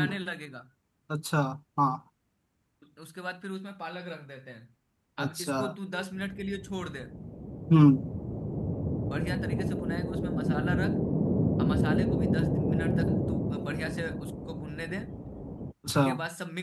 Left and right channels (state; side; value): identical; both; correlation 1.00